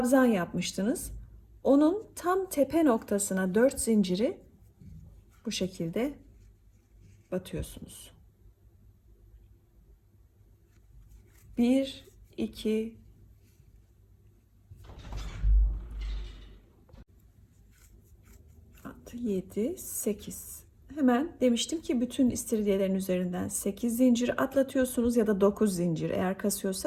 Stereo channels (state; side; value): identical; both; correlation 1.00